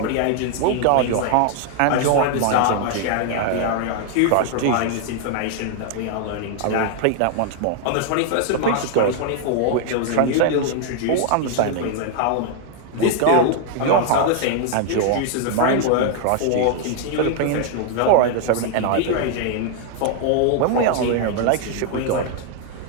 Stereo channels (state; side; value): different; both; correlation 0.00